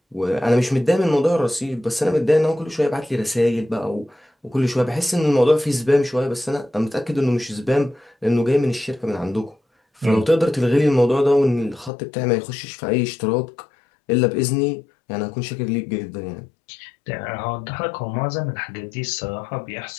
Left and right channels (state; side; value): drops out; right; at 11.9 s